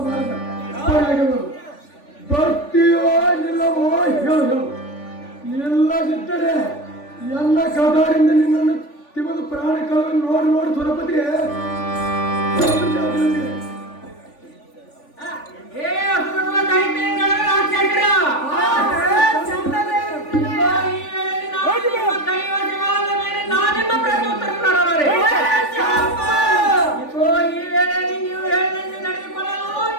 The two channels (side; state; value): right; late; 3.5 ms